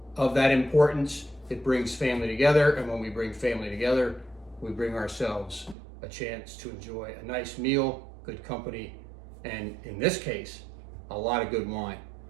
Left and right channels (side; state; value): left; drops out; at 5.8 s